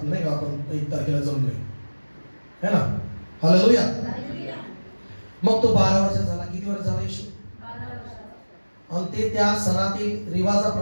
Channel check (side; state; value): both; inverted; correlation -1.00